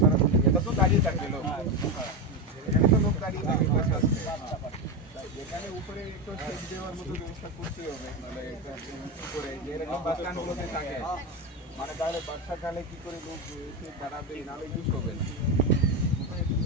এটা তো দাঁড়িয়ে থাকবে লোক, এখানে তো লোক দাঁড়িয়ে থাকে বসে আসবে, এখানে উপরে একটু সেট দেওয়ার মতো ব্যবস্থা করতে হবে, মানে করে যেরকম বাস স্ট্যান্ডগুলোতে থাকে, মানে তাহলে বর্ষাকালে কি করে লোক এসে দাঁড়াবে, নাহলে ইউজ হবে না।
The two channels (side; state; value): both; normal; correlation 0.14